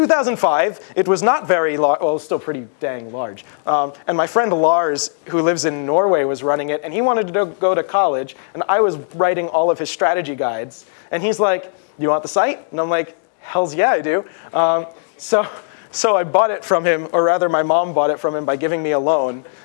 it was not very large. Well, it was still pretty dang large. And my friend Lars, who lives in Norway, was running it, and he wanted to go to college, and I was writing all of his strategy guides. And he's like, "You want the site?" And I'm like, "Hells yeah, I do." So I bought it from him, or rather my mom bought it from him by giving me a loan.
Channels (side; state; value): right; silent; digital silence